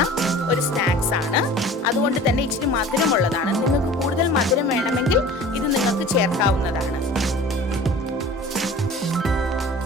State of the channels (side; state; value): both; normal; correlation 0.42